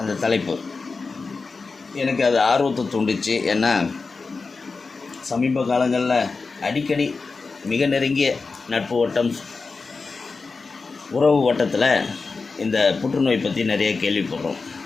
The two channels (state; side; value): quieter; right; 4.3 dB